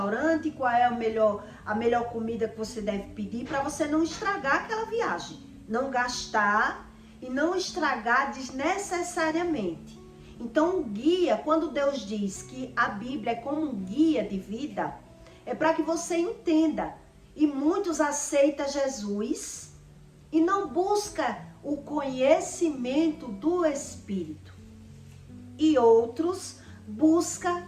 qual é a melhor comida que você deve pedir para você não estragar aquela viagem. Não gastar e não estragar desnecessariamente. Então o guia, quando Deus diz que a Bíblia é como um guia de vida, é para que você entenda. E muitos aceitam Jesus e não buscam o conhecimento do Espírito. E outros buscam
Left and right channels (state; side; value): identical; both; correlation 1.00